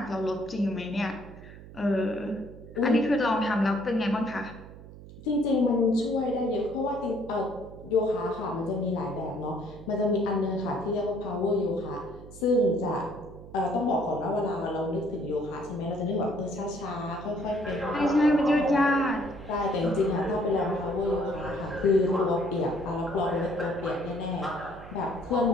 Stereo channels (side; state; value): right; noise; hum, 16 dB below the sound